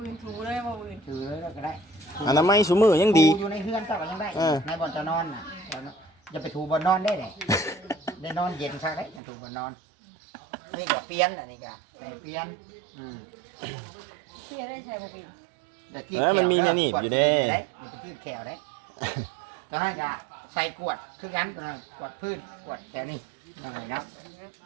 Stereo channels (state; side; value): drops out; left; at 9.2 s